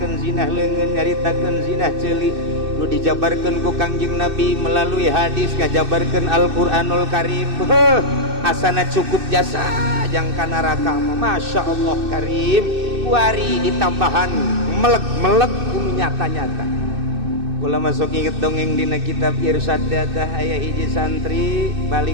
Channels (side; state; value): left; late; 2.6 ms